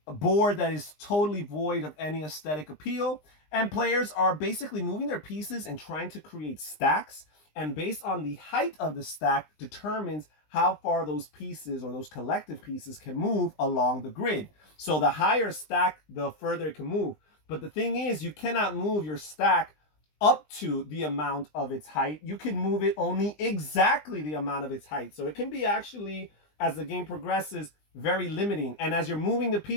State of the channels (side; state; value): right; late; 20 ms